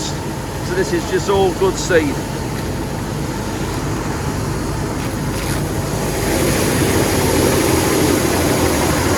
So this is just all good seed.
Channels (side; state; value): both; identical; correlation 1.00